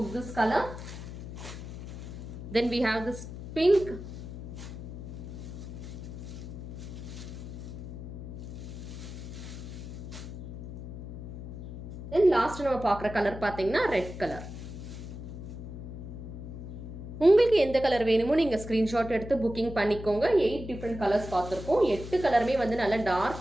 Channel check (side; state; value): left; noise; hum, 10 dB below the sound